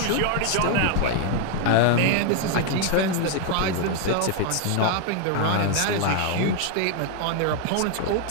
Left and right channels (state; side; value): different; both; correlation 0.01